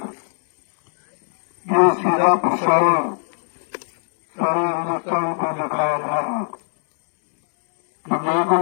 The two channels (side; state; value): right; silent; 66 dB below the other